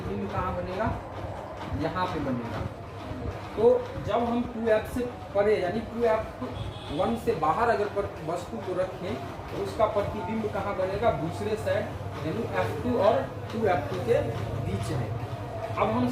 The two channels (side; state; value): both; identical; correlation 1.00